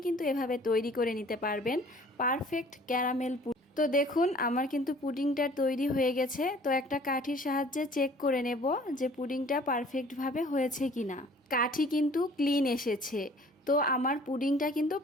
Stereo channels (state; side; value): normal; both; correlation 0.52